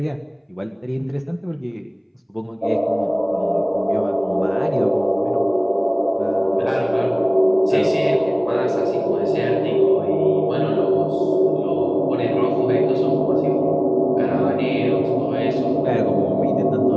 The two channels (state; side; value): identical; both; correlation 1.00